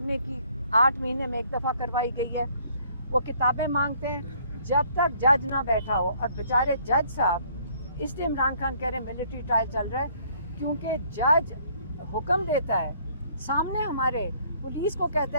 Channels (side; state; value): both; inverted; correlation -0.62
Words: کی 8 مہینے میں 1 دفعہ کروائی گئی ہے. وہ کتابیں مانگتے ہیں جب تک جج نہ بیٹھا ہو, اور بیچارے جج صاحب, اس لیے عمران خان کہہ رہے ہیں ملٹری ٹرائل چل رہا ہے کیونکہ جج حکم دیتا ہے سامنے ہمارے, پولیس کو کہتا